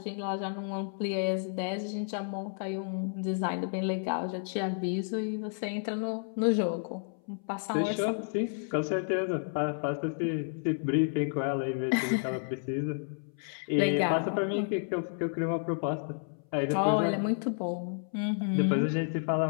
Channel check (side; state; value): right; silent; 57 dB below the other